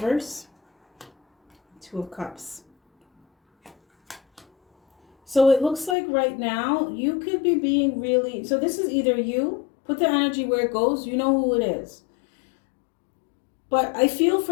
Two of Cups. So it looks like right now you could be being really, so this is either you, put the energy where it goes, you know who it is. But I feel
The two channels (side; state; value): right; drops out; at 6.0 s